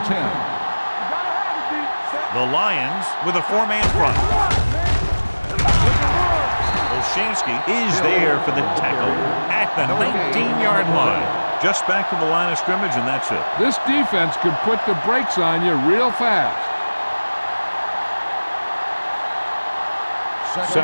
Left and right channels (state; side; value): inverted; both; correlation -1.00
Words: 10. The Lions with a 4-man front. Olshansky is there for the tackle at the 19-yard line. Just back to the line of scrimmage, and that's it. This defense could put the brakes on you real fast.